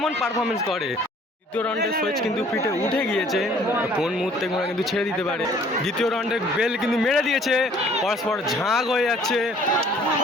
পারফরমেন্স করে। দ্বিতীয় রাউন্ডের সুইচ কিন্তু পিঠে উঠে গিয়েছে, কোন মুহূর্তে ঘোড়া কিন্তু ছেড়ে দিতে পারে। দ্বিতীয় রাউন্ডের বেল কিন্তু মেরে দিয়েছে, পরস্পর ঝাঁক হয়ে যাচ্ছে।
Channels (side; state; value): both; normal; correlation 0.56